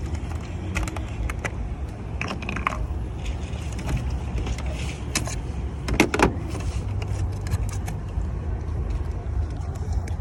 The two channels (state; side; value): identical; both; correlation 1.00